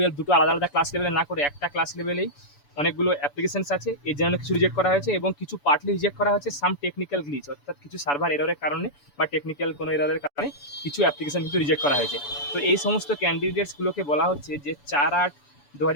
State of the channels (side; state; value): right; late; 7.0 ms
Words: দুটো আলাদা আলাদা ক্লাস লেভেলে না করে একটা ক্লাস লেভেলেই অনেকগুলো অ্যাপ্লিকেশনস আছে। এর জন্য কিছু রিজেক্ট করা হয়েছে এবং কিছু পার্টলি রিজেক্ট করা হয়েছে সাম টেকনিক্যাল গ্লিচ, অর্থাৎ কিছু সার্ভার এররের কারণে বা টেকনিক্যাল কোনো এররের কারণে কিছু অ্যাপ্লিকেশন কিন্তু রিজেক্ট করা হয়েছে। তো এই সমস্ত ক্যান্ডিডেটসগুলোকে বলা হচ্ছে যে